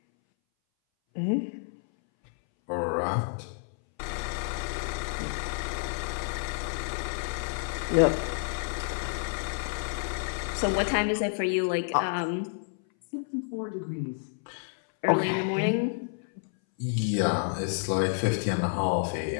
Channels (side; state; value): right; silent; 58 dB below the other